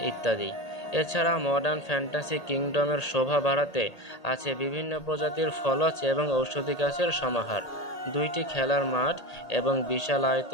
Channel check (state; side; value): late; right; 1.8 ms